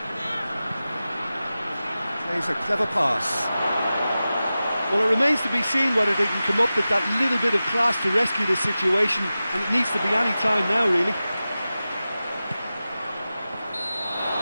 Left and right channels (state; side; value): inverted; both; correlation -0.95